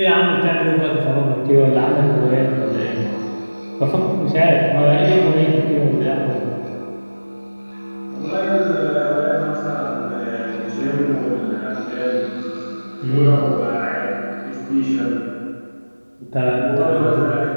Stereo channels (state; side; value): inverted; both; correlation -1.00